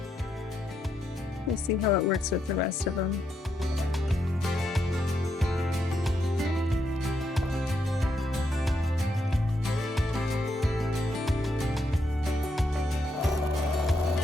we'll see how it works with the rest of them.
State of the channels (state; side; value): normal; both; correlation 0.79